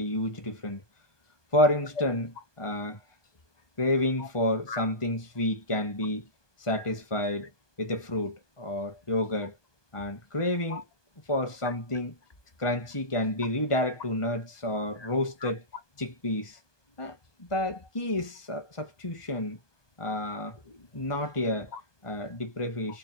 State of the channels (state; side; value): late; right; 1.2 ms